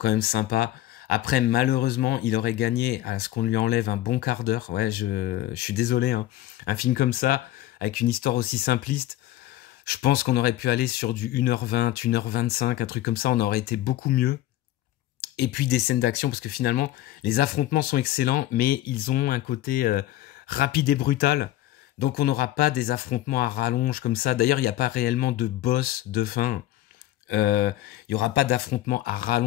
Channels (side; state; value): right; quieter; 14.6 dB